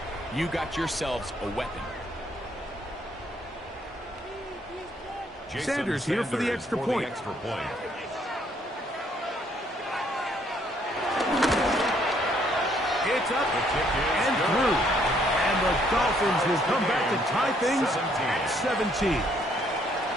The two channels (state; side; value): normal; both; correlation 0.67